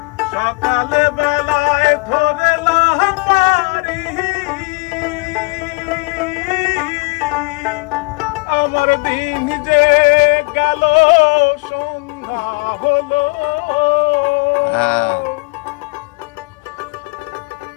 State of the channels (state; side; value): quieter; right; 28.6 dB